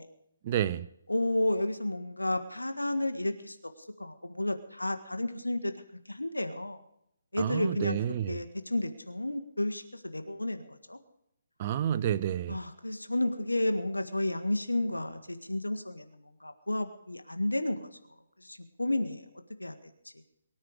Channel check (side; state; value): both; inverted; correlation -0.87